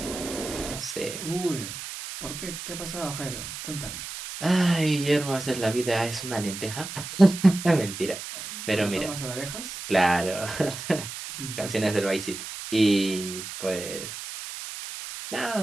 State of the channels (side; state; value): right; noise; hiss, 9 dB below the sound